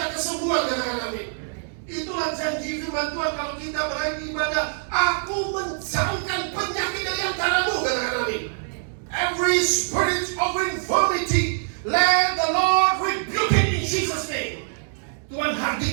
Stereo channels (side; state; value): left; silent; digital silence